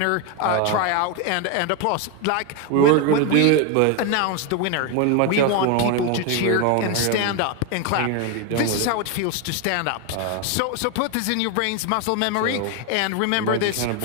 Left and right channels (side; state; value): both; different; correlation 0.02